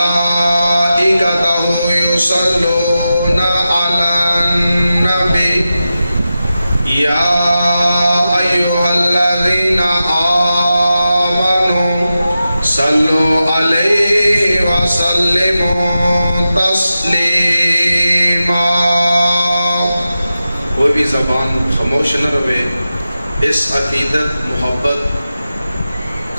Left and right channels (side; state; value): both; inverted; correlation -0.92